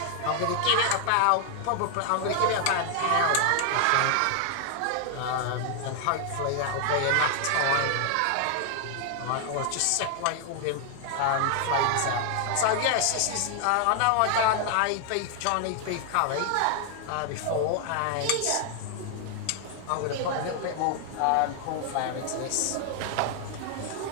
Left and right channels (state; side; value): different; both; correlation 0.00